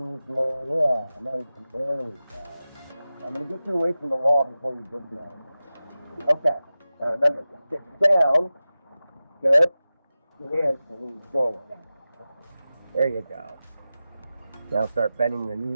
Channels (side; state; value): both; inverted; correlation -0.95